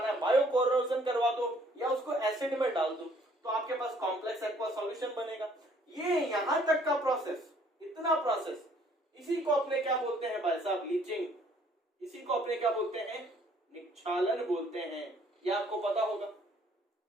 है, बायो कोरोजन करवा दो या उसको एसिड में डाल दो, तो आपके पास कॉम्प्लेक्स एक्वा सॉल्यूशन बनेगा। ये यहां तक का प्रोसेस, इतना प्रोसेस, इसी को अपने क्या बोलते हैं भाई साहब, लीचिंग। इसी को अपने क्या बोलते हैं, निक्षालन बोलते हैं। ये आपको पता होगा।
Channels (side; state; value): both; normal; correlation 0.61